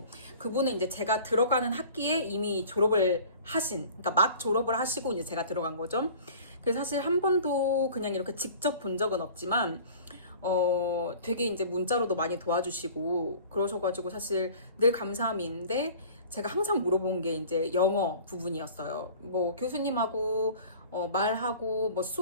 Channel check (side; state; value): both; inverted; correlation -0.45